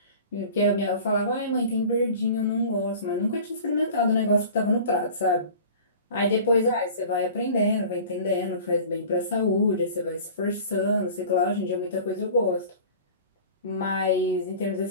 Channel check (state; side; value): inverted; both; correlation -0.41